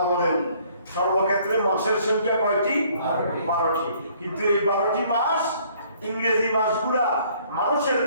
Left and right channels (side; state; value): both; inverted; correlation -0.61